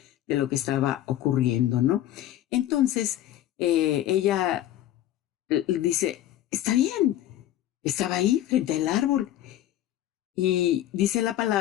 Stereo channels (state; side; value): quieter; right; 12.9 dB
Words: de lo que estaba ocurriendo, ¿no? Entonces, ella dice, está bien, estaba ahí frente al árbol. Y dice la